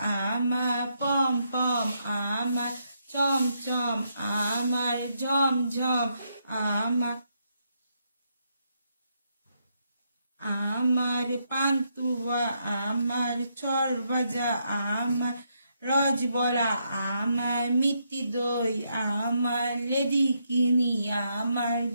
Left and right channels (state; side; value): inverted; both; correlation -0.78